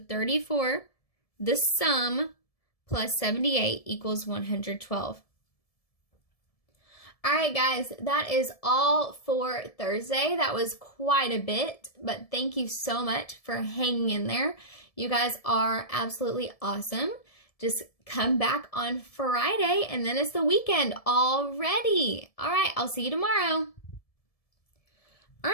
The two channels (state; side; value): late; right; 1.7 ms